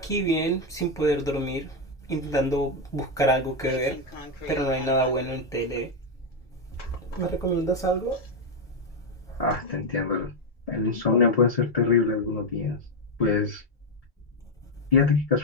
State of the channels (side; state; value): both; normal; correlation 0.05